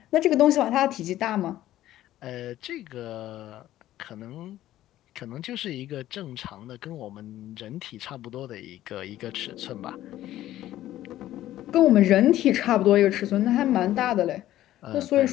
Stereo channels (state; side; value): quieter; right; 13.8 dB